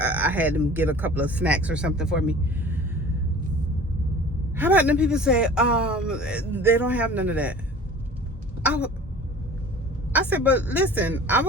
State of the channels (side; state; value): both; normal; correlation 0.43